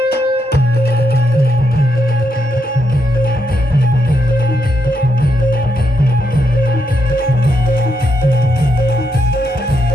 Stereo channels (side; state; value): both; normal; correlation 0.80